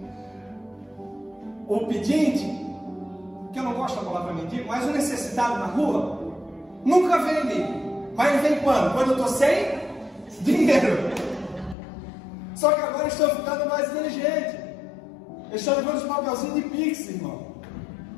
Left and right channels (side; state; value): right; drops out; at 11.8 s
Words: O pedinte, que eu não gosto da palavra mendigo, mas o necessitado na rua, nunca vem ali. Mas ele vem quando? Quando eu estou sem dinheiro. Só que agora eu estou ficando mais inteligente. Eu estou levando os papelzinhos de Pix, irmão.